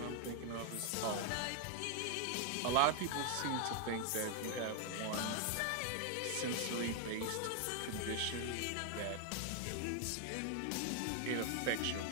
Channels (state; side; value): different; both; correlation 0.00